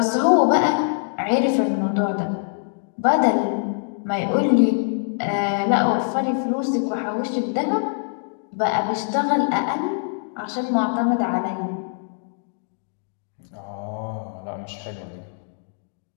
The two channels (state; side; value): silent; right; digital silence